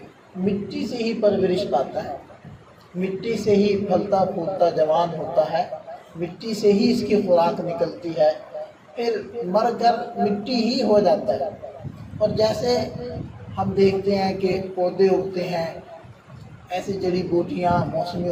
مٹی سے ہی پرورش پاتا ہے، مٹی سے ہی پھلتا پھولتا جوان ہوتا ہے، مٹی سے ہی اس کی خوراک نکلتی ہے، پھر مر کر مٹی ہی ہو جاتا ہے۔ اور جیسے ہم دیکھتے ہیں کہ پودے اگتے ہیں، ایسی جڑی بوٹیاں موسمی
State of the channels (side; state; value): both; identical; correlation 1.00